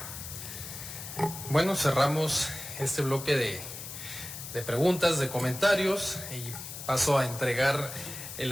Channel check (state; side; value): noise; left; hiss, 10 dB below the sound